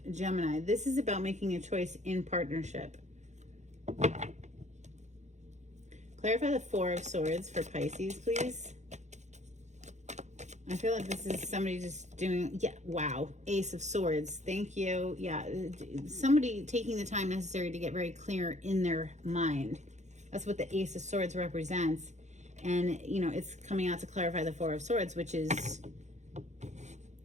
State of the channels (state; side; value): late; left; 0.34 ms